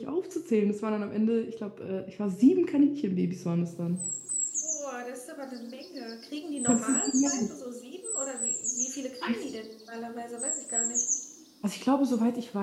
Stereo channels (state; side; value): identical; both; correlation 1.00